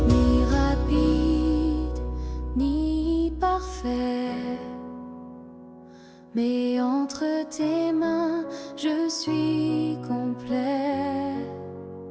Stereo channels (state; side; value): identical; both; correlation 1.00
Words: fait. Mais entre tes mains, je suis complet.